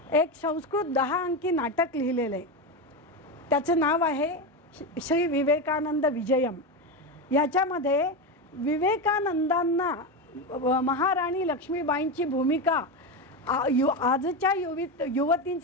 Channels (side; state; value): both; normal; correlation 0.15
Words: एक संस्कृत 10 अंकी नाटक लिहिलेलं आहे. त्याचं नाव आहे श्री विवेकानंद विजयम. याच्यामध्ये विवेकानंदांना महाराणी लक्ष्मीबाईंची भूमिका आजच्या